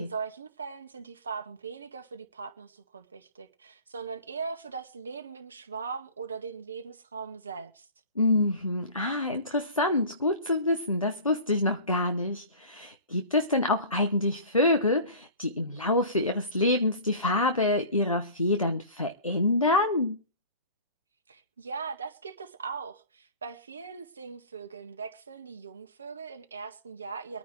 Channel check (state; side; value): inverted; both; correlation -0.40